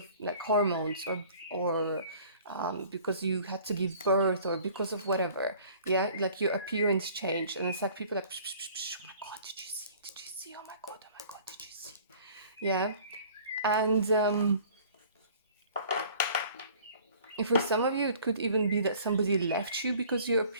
like hormones, or because you had to give birth, or because of whatever. Yeah, like your appearance changed, and it's like people are like, psh, psh, psh, oh my god, did you see, oh my god, did you see? Yeah. And if for some of you, it could even be that somebody left you because your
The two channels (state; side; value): inverted; both; correlation -0.50